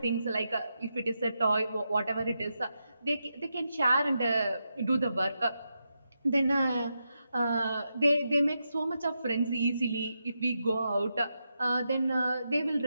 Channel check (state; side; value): inverted; both; correlation -0.86